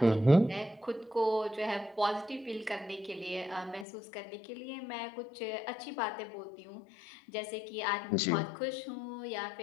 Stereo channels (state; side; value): drops out; right; at 3.9 s